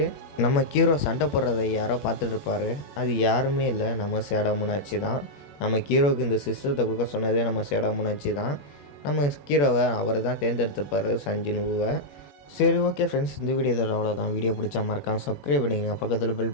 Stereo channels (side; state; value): right; late; 21 ms